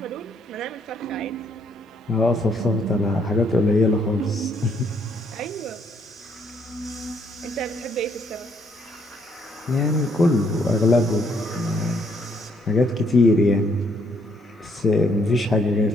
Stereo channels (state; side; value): normal; both; correlation 0.70